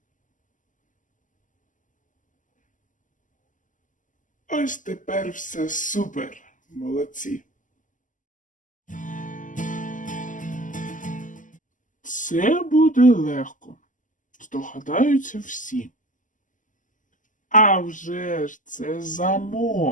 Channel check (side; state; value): right; late; 0.37 ms